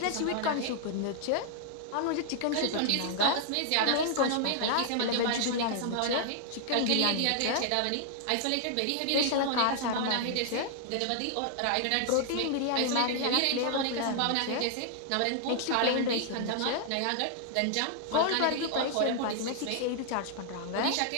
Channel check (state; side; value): different; both; correlation -0.01